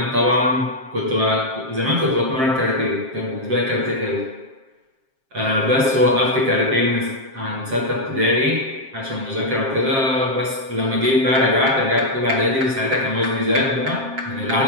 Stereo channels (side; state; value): left; late; 7.5 ms